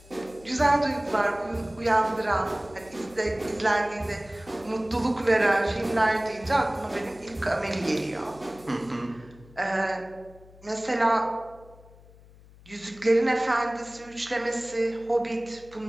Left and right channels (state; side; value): noise; left; hum, 23 dB below the sound